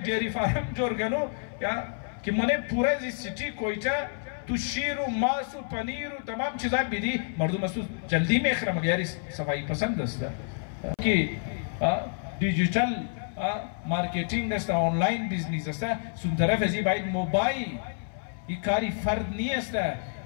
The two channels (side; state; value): right; silent; 57 dB below the other